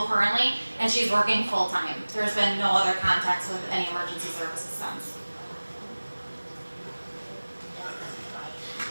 currently, and she's working full-time. There's been no other contacts with any emergency services since.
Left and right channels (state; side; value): inverted; both; correlation -1.00